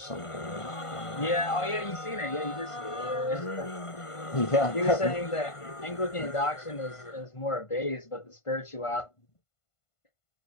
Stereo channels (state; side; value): late; right; 1.5 ms